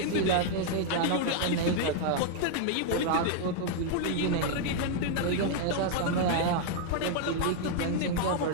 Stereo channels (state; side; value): different; both; correlation 0.00